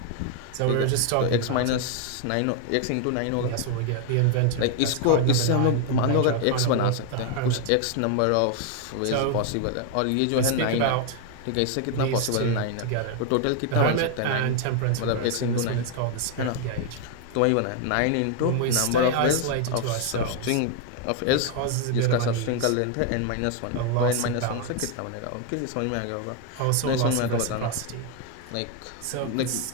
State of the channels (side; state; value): both; different; correlation 0.00